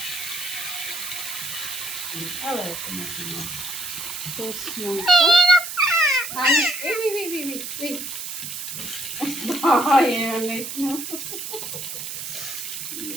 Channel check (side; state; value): right; noise; hiss, 7 dB below the sound